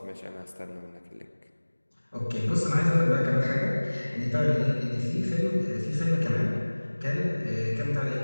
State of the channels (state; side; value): inverted; both; correlation -1.00